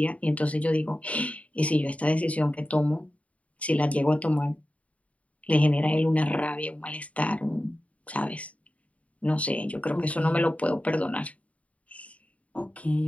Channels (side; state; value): right; late; 0.067 ms